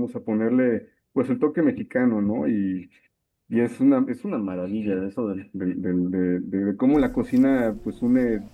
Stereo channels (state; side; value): identical; both; correlation 1.00